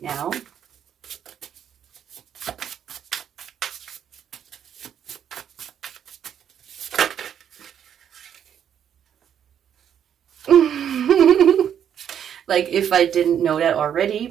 now? Like, if I didn't know that already,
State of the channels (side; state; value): left; quieter; 9.1 dB